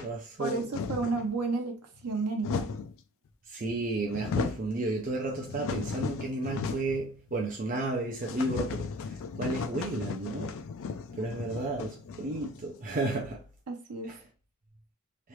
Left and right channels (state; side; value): normal; both; correlation 0.47